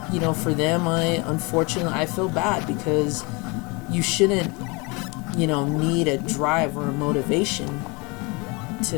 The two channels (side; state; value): right; quieter; 28.1 dB